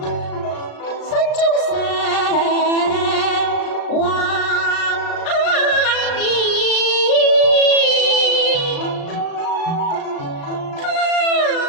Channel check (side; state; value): right; late; 36 ms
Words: 心中常懷念。